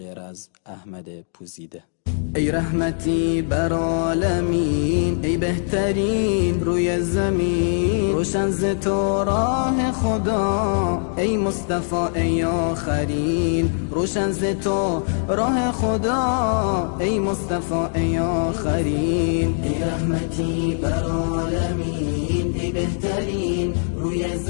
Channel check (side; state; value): right; silent; digital silence